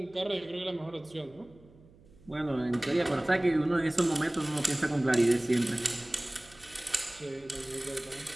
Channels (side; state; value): right; noise; hum, 26 dB below the sound